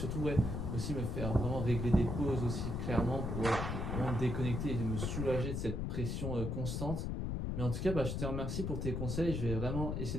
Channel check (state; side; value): noise; left; rumble, 2 dB below the sound